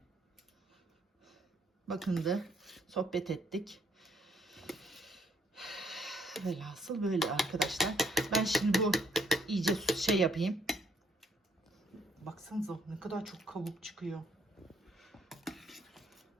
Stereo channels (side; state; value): both; normal; correlation 0.69